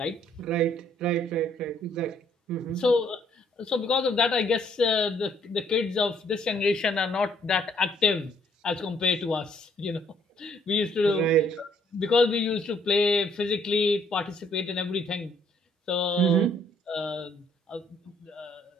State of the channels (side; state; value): both; normal; correlation 0.65